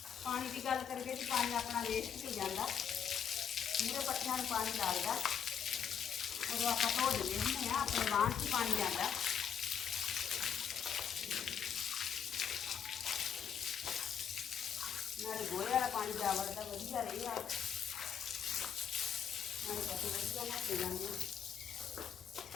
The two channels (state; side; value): quieter; right; 7.9 dB